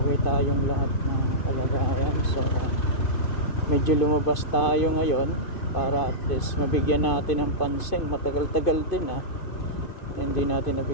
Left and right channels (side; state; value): right; late; 2.5 ms